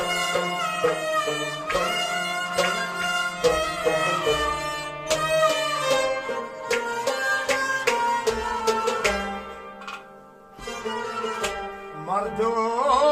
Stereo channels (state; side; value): identical; both; correlation 1.00